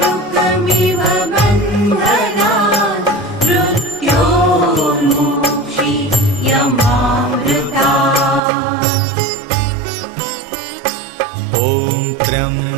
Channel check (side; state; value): left; drops out; at 8.4 s